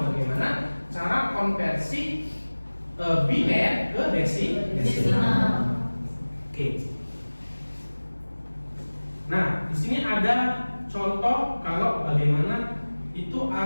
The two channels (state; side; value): inverted; both; correlation -1.00